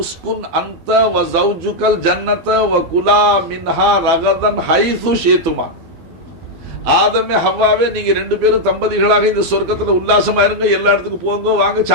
அன்த வ ஜௌஜுகல் ஜன்னத வ குலா மின்ஹா ரகதன் ஹைது ஷீதுமா. ஆதமே ஹவ்வாவே, நீங்க 2 பேரும் தம்பதிகளாக இந்த சொர்க்கத்துல உல்லாசமா இருங்க, எல்லா இடத்துக்கு போங்க, வாங்க,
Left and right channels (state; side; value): late; left; 12 ms